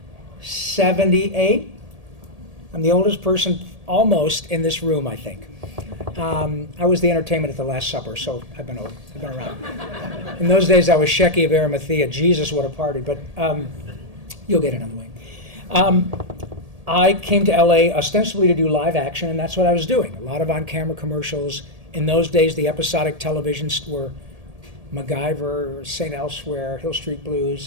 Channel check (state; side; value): late; left; 1.8 ms